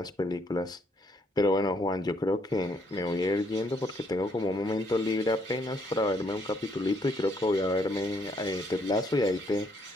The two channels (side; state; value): both; normal; correlation 0.70